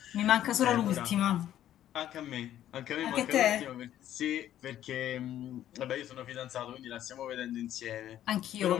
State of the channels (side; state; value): right; quieter; 11.8 dB